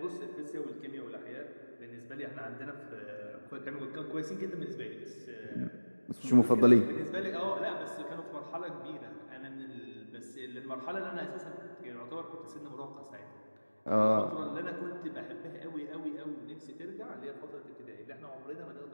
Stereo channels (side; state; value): both; inverted; correlation -1.00